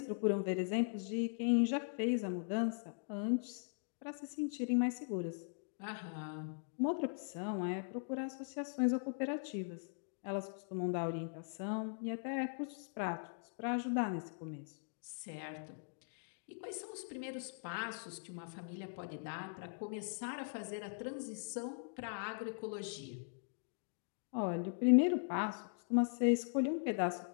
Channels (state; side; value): silent; right; digital silence